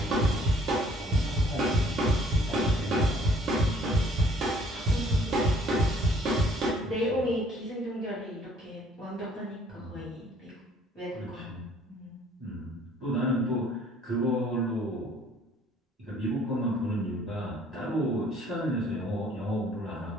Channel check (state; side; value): normal; both; correlation 0.59